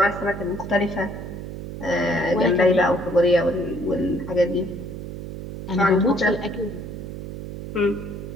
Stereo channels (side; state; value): right; noise; hum, 9 dB below the sound